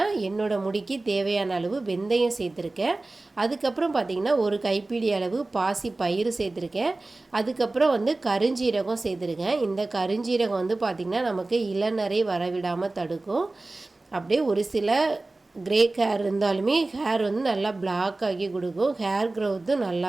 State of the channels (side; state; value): left; quieter; 3.1 dB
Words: என்னோடய முடிக்கு தேவையான அளவு வெந்தயம் சேர்த்துருக்கேன். அதுக்கப்புறம் பார்த்திங்கன்னா ஒரு கைப்பிடி அளவு பாசி பயிறு சேர்த்துருக்கேன். அதுக்கப்புறம் வந்து கருஞ்சீரகம் சேர்த்துருக்கேன். இந்த கருஞ்சீரகம் வந்து பார்த்திங்கன்னா நமக்கு இளநரை வரவிடாமல் தடுக்கும். அப்படியே ஒரு சில கிரே ஹேர் இருந்தாலுமே ஹேர் வந்து நல்லா பிளாக் ஆகி கொடுக்கும். ஹேர் க்ரோத்தும்